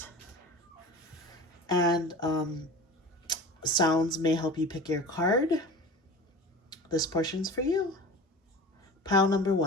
and sounds may help you pick your card, this portion's for you. Pile number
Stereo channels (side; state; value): both; normal; correlation 0.35